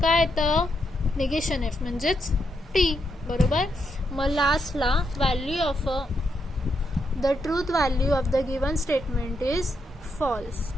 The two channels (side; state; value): both; normal; correlation 0.80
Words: काय येतं? निगेशन एफ म्हणजेच टी बरोबर. मग लास्टला value of the truth value of the given statement is false.